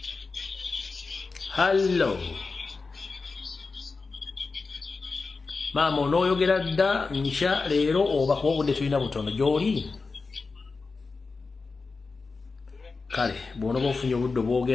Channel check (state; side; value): quieter; right; 4.2 dB